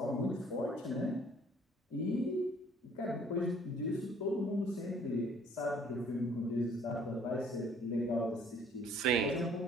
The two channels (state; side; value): normal; both; correlation 0.57